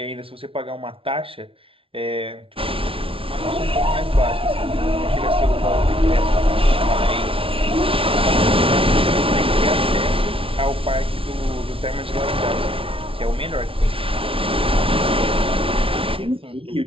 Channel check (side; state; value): left; late; 0.26 ms